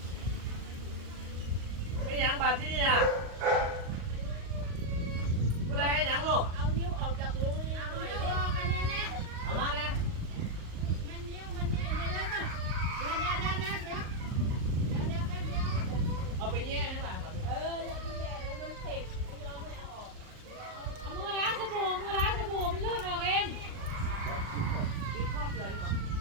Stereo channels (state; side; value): late; left; 38 ms